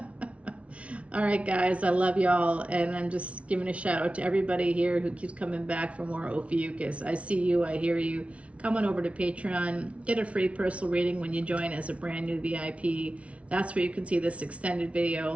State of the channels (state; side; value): late; left; 0.063 ms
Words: All right, guys, I love y'all, and I'm just giving a shout out to everybody here who keeps coming back for more Ophiuchus. I see you, I hear you. Come on over to Patreon, get a free personal reading when you join as a brand new VIP. That's where you can see this extended